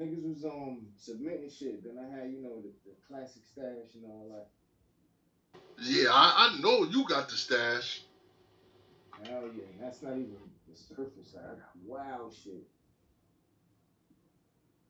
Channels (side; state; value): both; identical; correlation 1.00